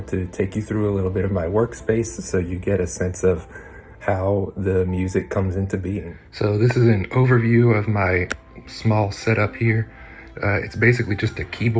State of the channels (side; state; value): both; identical; correlation 1.00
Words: to take you through a little bit of my workspace so you get a sense of how the music comes into being. So this is an overview of my small setup here. It's basically just a